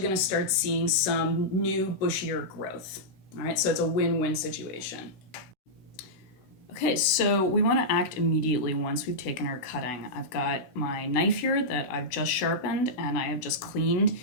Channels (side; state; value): right; late; 16 ms